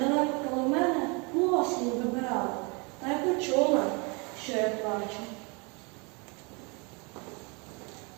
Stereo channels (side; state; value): left; quieter; 31.0 dB